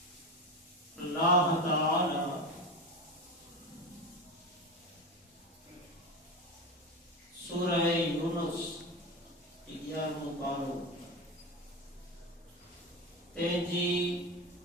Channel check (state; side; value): normal; both; correlation 0.22